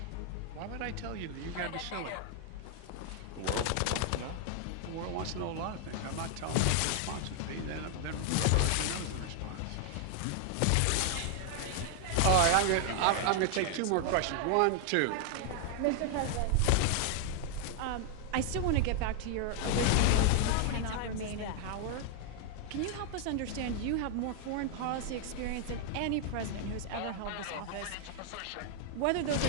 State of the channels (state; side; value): different; both; correlation 0.00